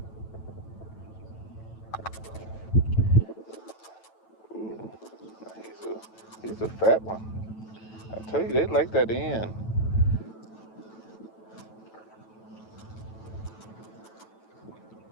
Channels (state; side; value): late; right; 9.1 ms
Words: a fat one. I tell you, they like that end.